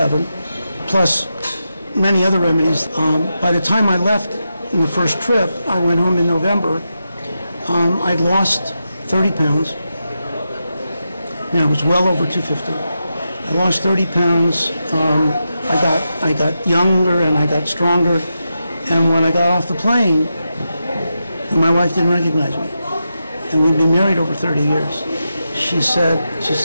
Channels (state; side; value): inverted; both; correlation -0.88